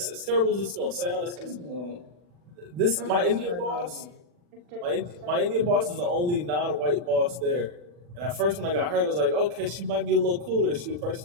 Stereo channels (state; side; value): late; left; 40 ms